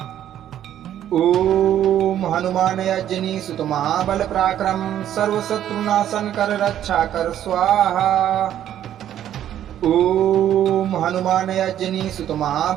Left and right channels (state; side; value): quieter; left; 11.1 dB